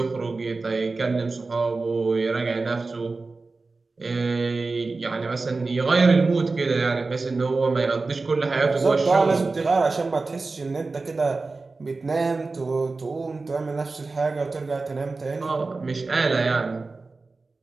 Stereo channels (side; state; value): left; quieter; 3.7 dB